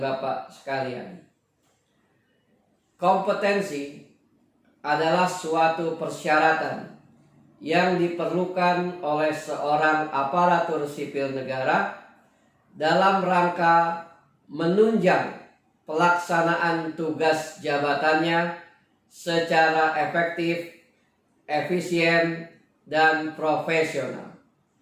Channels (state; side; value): identical; both; correlation 1.00